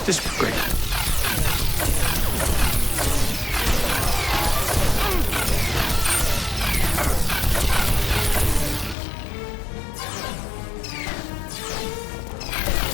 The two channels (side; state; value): right; drops out; at 9.0 s